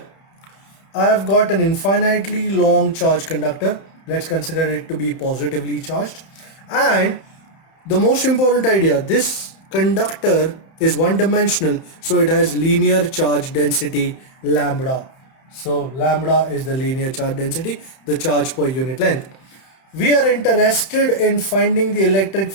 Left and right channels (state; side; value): late; right; 31 ms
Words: I have got an infinitely long charged conductor. Let's consider it to be positively charged. And the most important idea, this conductor is one-dimensional, so it has linear charge density lambda. So lambda is the linear charge density, the charge per unit length. We are interested in finding the electric